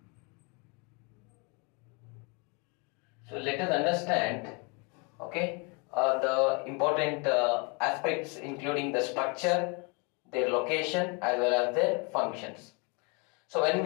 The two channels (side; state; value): right; quieter; 32.5 dB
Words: So let us understand, okay, the important aspects including the structure, their location as well as their functions. So when